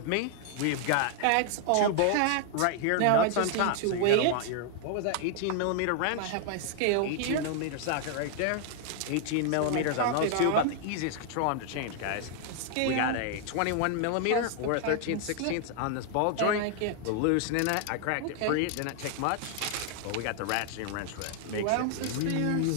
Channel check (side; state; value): both; different; correlation 0.00